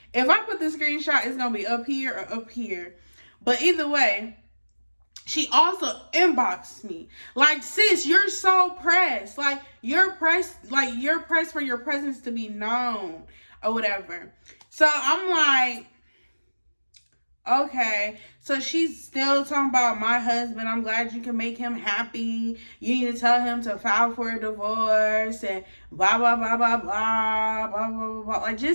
If I put the screenshot, it's going to be up here or up here. But either way, she also inboxed me. Like, sis, you're so pressed. Like, you're pressed for your presence to be known or whatever. So I'm like, Okay, so she's still talking about my husband. I'm glad you can make him happy. You need to tell him to file for a divorce and blah, blah, blah, blah, blah, blah, blah, blah, blah. Like,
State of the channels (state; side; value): inverted; both; correlation -1.00